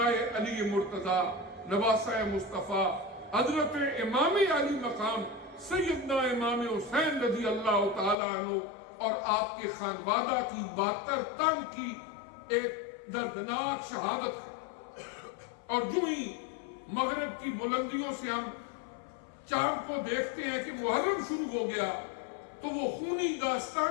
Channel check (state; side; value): drops out; right; at 8.2 s